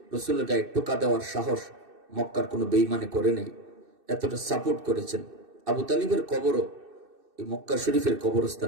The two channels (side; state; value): left; late; 2.6 ms